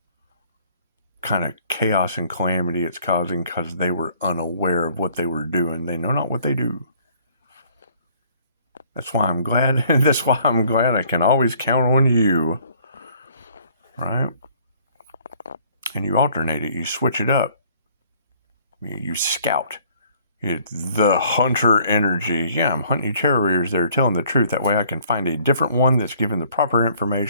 Kind of chaos and calamity it's causing because they were unaware of what they were doing. They know not what they do. That's why I'm glad. That's why I'm glad I can always count on you. Right? And you alternate it. You switch it up. You scout. The hunter energy. Yeah, I'm hunting terriers that are telling the truth. That way I can find a different one that's given the proper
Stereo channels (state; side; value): inverted; both; correlation -0.59